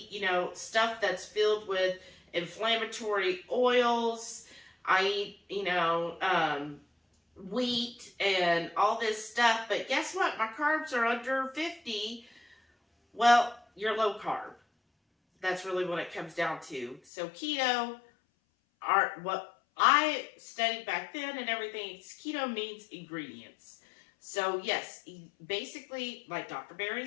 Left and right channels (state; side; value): drops out; right; at 17.0 s